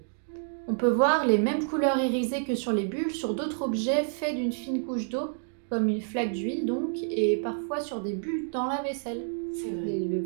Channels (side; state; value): left; silent; digital silence